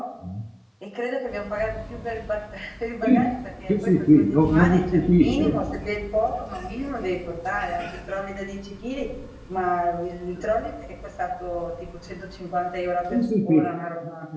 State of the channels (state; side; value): identical; both; correlation 1.00